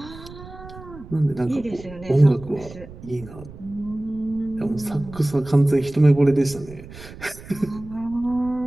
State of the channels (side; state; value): right; noise; rumble, 16 dB below the sound